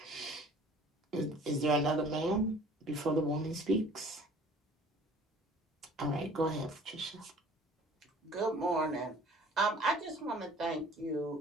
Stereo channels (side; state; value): both; normal; correlation 0.50